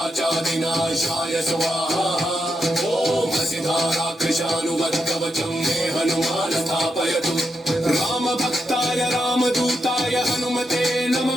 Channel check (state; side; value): normal; both; correlation 0.84